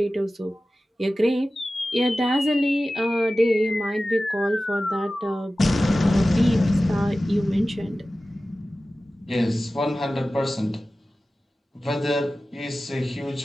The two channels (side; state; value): both; normal; correlation 0.96